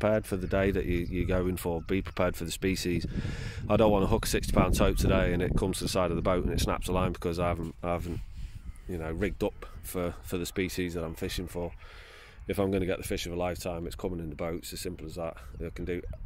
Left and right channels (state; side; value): identical; both; correlation 1.00